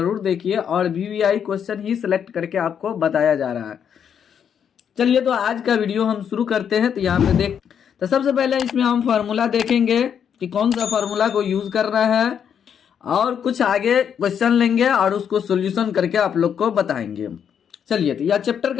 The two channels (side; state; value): right; quieter; 8.1 dB